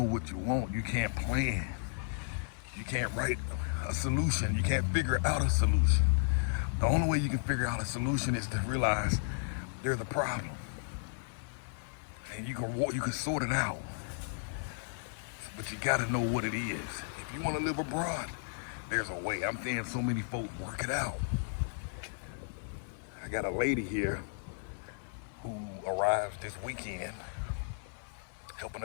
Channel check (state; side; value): silent; right; 55 dB below the other